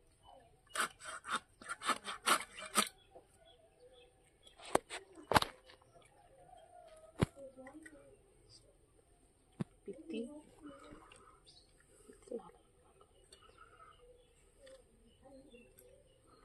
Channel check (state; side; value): identical; both; correlation 1.00